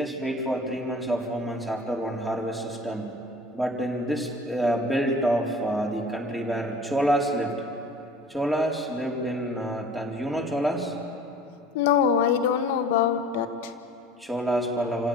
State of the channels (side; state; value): both; normal; correlation 0.45